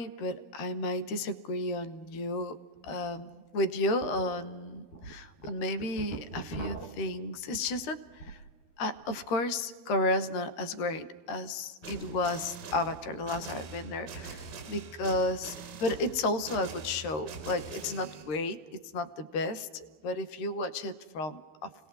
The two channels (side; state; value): right; late; 13 ms